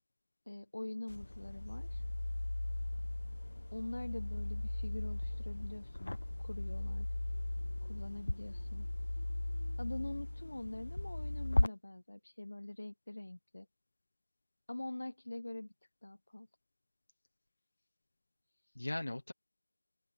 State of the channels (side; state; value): both; inverted; correlation -1.00